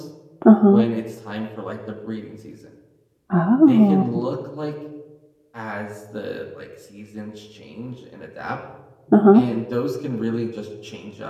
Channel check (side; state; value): both; identical; correlation 1.00